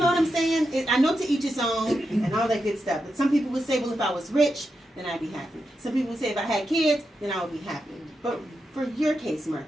what I'm saying? I know to each his own and all that good stuff. But some people would say, well, if I was rich, then I'd be happy. Some people would say if I had kids, then I would be happy. But for your case,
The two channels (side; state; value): both; normal; correlation 0.87